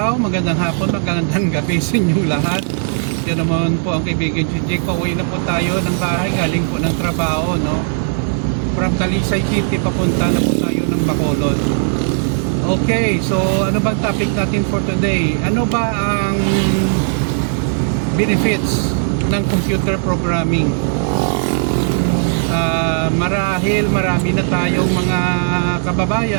magandang hapon, magandang gabi sa inyong lahat. Yan naman po ang kaibigan si Jake. Pauwi na po tayo ng bahay, galing po ng trabaho, no? From Talisay City, papunta na po tayo ng Bacolod. Okay, so ano bang topic natin for today? Ano ba ang benefits ng computer programming? Marahil marami na tayong mga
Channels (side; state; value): left; silent; 68 dB below the other